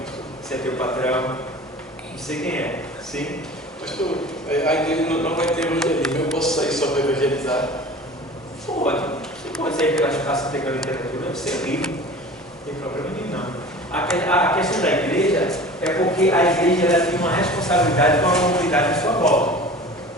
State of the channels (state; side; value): normal; both; correlation 0.40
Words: se é teu patrão, não sei quem é. Sim? Pastor, a igreja não vai ter evangelismo, eu posso sair só para evangelizar? Pode. Você pode sair pelas praças pegando literatura, você é livre. Não tem problema nenhum, não. A questão da igreja é porque a igreja ela tem uma responsabilidade com a comunidade à sua volta.